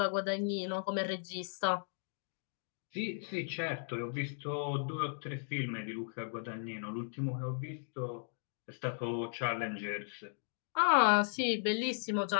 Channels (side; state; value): right; silent; digital silence